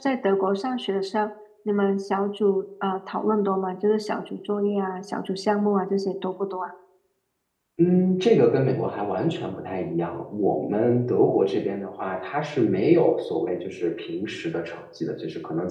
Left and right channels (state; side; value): identical; both; correlation 1.00